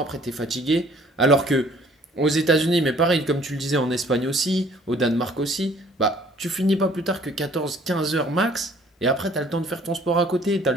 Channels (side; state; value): both; normal; correlation 0.56